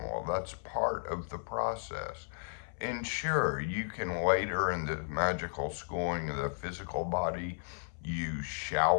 That's part of the process. And sure, you can later in the magical schooling of the physical body use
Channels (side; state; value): right; silent; 55 dB below the other